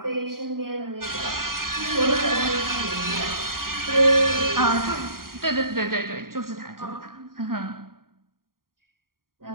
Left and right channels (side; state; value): left; late; 0.92 ms